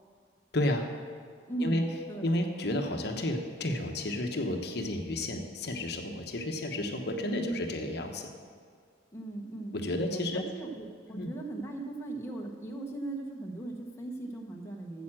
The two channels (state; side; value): normal; both; correlation 0.56